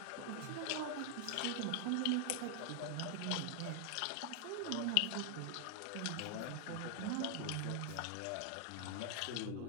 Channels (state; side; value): different; both; correlation 0.00